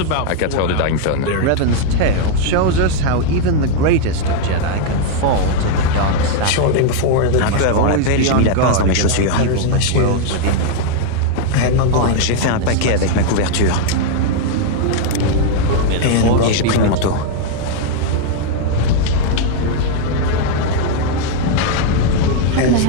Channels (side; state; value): both; different; correlation 0.00